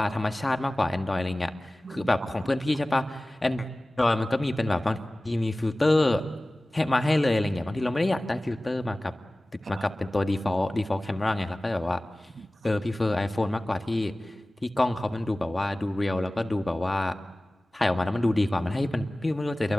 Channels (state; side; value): normal; both; correlation 0.98